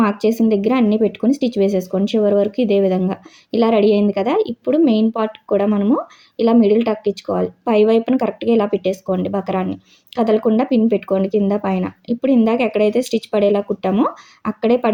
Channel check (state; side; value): identical; both; correlation 1.00